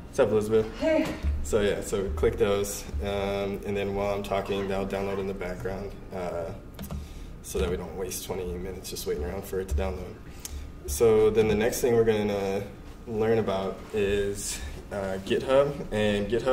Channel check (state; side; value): identical; both; correlation 1.00